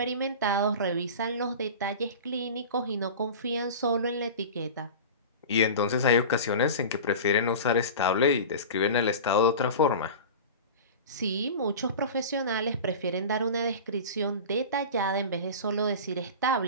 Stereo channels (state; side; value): inverted; both; correlation -0.32